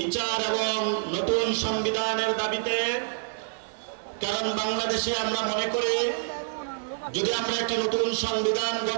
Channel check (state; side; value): silent; left; digital silence